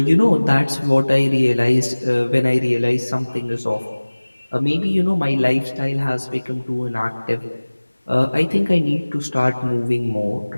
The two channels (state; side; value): inverted; both; correlation -1.00